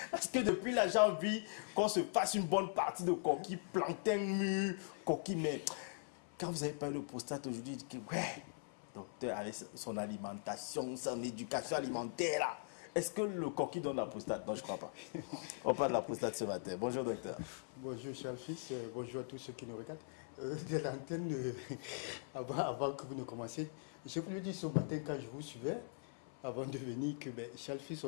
Est-ce que depuis là, j'ai envie qu'on se fasse une bonne partie de coquille, plantain mûr, coquille, mais quand vous avez parlé de prostate aujourd'hui, je dis que ouais, docteur, avec son alimentation, son éducation alimentaire là, est-ce que le coquille donne la prostate? Non, je crois pas. On parle de la prostate ce matin. Bonjour docteur. Bonjour cher fils, bonjour à tous ceux qui nous regardent. De l'antenne, avant que vous ne commenciez, je voulais dire ce matin quand je vous suivais, avant de venir, que cher fils,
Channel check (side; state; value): right; silent; 50 dB below the other